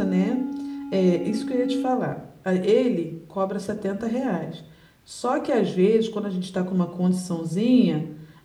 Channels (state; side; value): identical; both; correlation 1.00